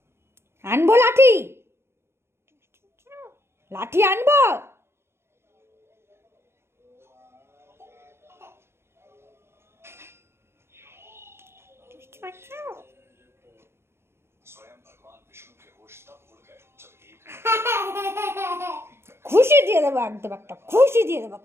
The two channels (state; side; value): late; left; 0.12 ms